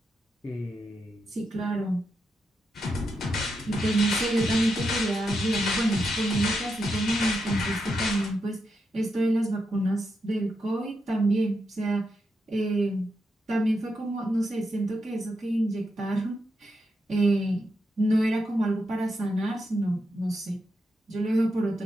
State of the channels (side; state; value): both; normal; correlation 0.84